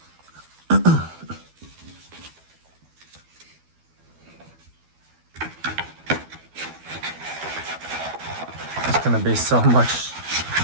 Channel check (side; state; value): left; late; 12 ms